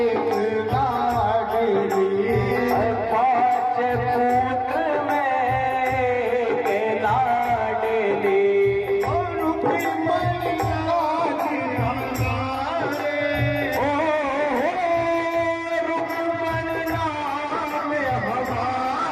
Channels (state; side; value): identical; both; correlation 1.00